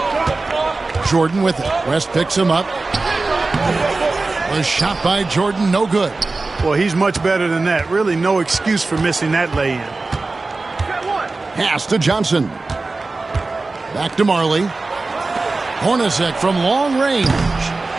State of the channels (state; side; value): quieter; left; 3.5 dB